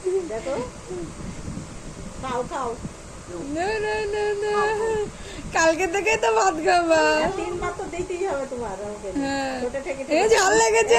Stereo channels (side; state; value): both; identical; correlation 1.00